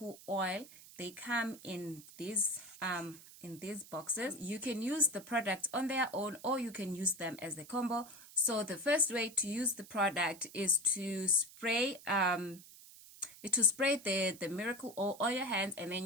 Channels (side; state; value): right; noise; hiss, 19 dB below the sound